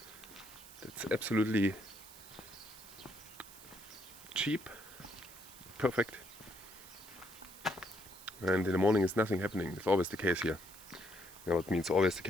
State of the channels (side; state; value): right; noise; hiss, 17 dB below the sound